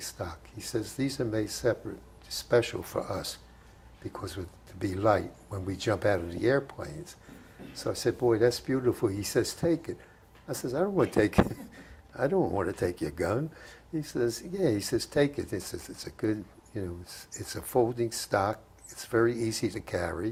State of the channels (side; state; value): both; identical; correlation 1.00